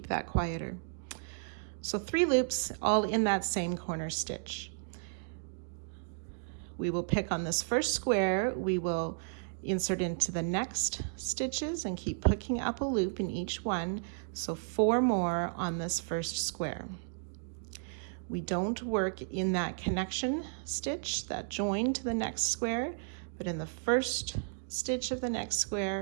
that quieter. So 3 loops all in that same corner stitch. We will pick on this first square, we will insert into the next stitches and keep picking up a loop in each one, so 4 more on this first square. We don't work in that connection stitch, that join to the next square, but in the first stitch of the next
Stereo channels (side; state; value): left; silent; digital silence